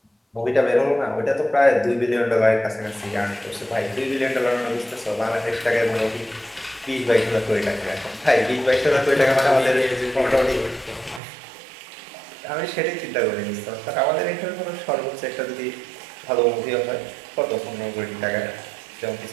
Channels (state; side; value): drops out; left; at 11.2 s